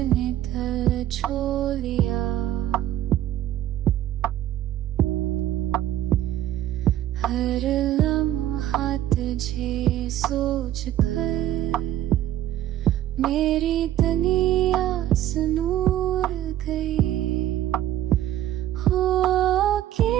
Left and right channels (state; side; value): quieter; left; 12.6 dB